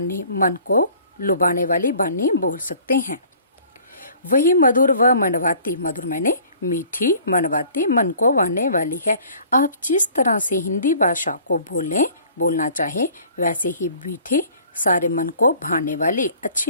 मन को लुभाने वाली बानी बोल सकते हैं। वही मधुर व मनवाती, मधुर मैंने मीठी, मनवाती मन को भाने वाली है। आप जिस तरह से हिंदी भाषा को बोलना चाहे वैसे ही मीठी, सारे मन को भाने वाली,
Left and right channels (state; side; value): inverted; both; correlation -0.52